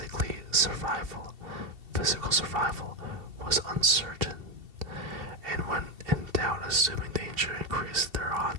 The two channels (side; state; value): left; late; 2.7 ms